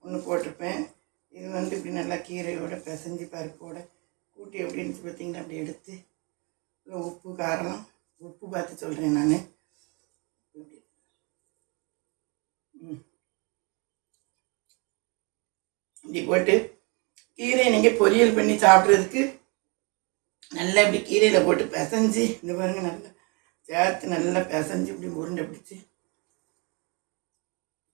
ஒன்று போட்டிருப்பேன். இது வந்து இப்படி நல்லா கீரையோட பிசைஞ்சு பருப்போட கூட்டி எப்படின்னு பார்த்தீங்கன்னா அப்படி எடுத்து உப்பு காரம் உப்பு பார்த்து சொல்கிறேன் நான். இப்படி போட்டு கீரையை நீங்கள் பொரியல் பண்ணி சாப்பிட்றதுக்கு நல்லா இப்படி கீரையில் போட்டு பிசைஞ்சு இந்த பாருங்கள் நல்லா சேர்த்து நல்லா பிசைஞ்சு இப்படி உருண்டை பிடிச்சி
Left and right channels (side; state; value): left; quieter; 31.4 dB